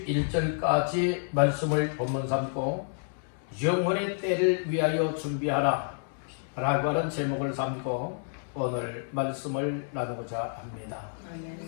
말씀을 본문 삼고 영혼의 때를 위하여 준비하라 라고 하는 제목을 삼고 오늘 말씀을 나누고자 합니다.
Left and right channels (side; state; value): right; silent; digital silence